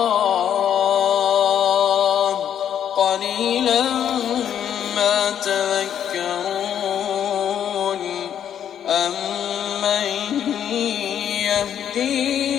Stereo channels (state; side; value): quieter; right; 9.5 dB